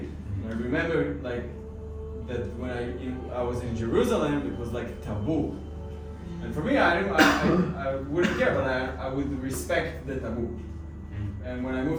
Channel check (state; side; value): identical; both; correlation 1.00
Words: I remember like that when I was in Jerusalem, it was like taboo, and for me, I wouldn't care, but I would respect the taboo. And when I